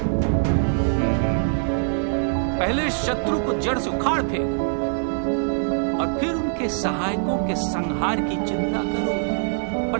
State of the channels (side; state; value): left; silent; digital silence